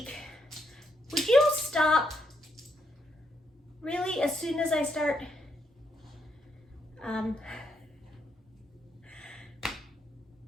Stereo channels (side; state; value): both; normal; correlation 0.77